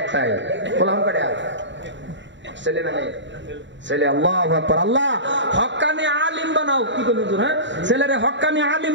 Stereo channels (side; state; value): left; late; 0.53 ms